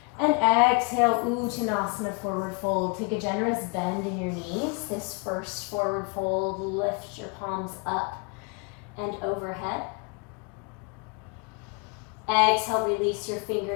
And exhale, Uttanasana, forward fold. Take a generous bend in your knees. This first forward fold, lift your palms up and overhead. Exhale, release your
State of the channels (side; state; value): right; quieter; 33.0 dB